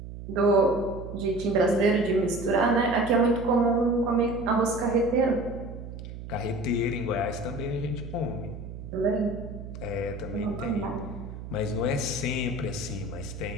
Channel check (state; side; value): noise; right; hum, 11 dB below the sound